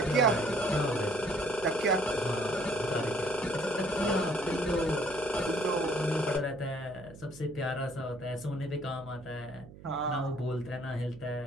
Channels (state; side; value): noise; right; hum, 18 dB below the sound